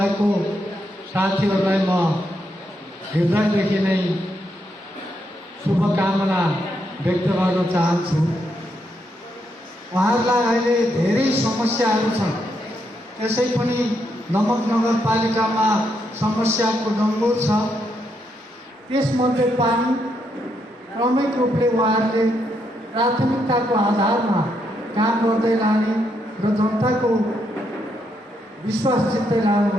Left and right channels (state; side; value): normal; both; correlation 0.78